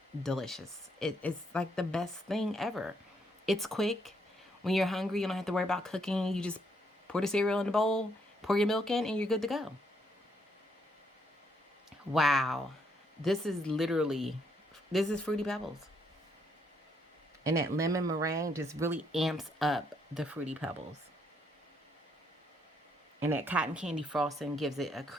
delicious. It's like the best thing ever. It's quick. When you're hungry, you don't have to worry about cooking. You just pour the cereal in the bowl, pour your milk in, and you're good to go. Wow. This is Fruity Pebbles. And that lemon meringue just really amps up the Fruity Pebbles. And that cotton candy frosting gives it a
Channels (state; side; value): normal; both; correlation 0.73